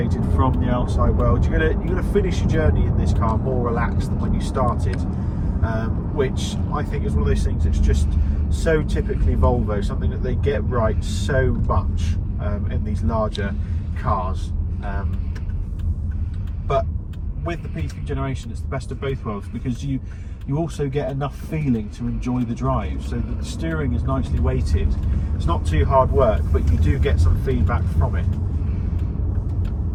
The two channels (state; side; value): identical; both; correlation 1.00